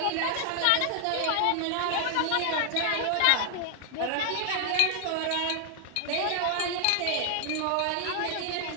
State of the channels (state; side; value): different; both; correlation 0.00